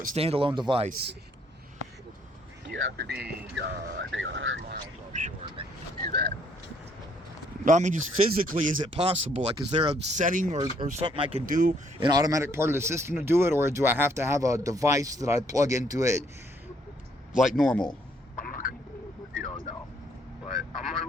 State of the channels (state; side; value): normal; both; correlation 0.67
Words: standalone device? You have to be, I think, 100 miles offshore to do that. No, I mean, just physically, is it possible? Like, is there a setting or something I can do, an automatic part of the system to do it? Or do I have to have a device that I plug into it like normal? I'm not going to, you don't know. But I'm going to